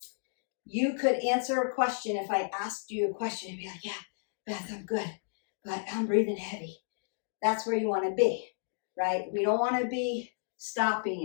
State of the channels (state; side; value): silent; right; digital silence